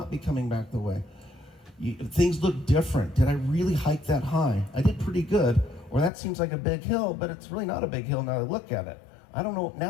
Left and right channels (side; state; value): right; drops out; at 6.1 s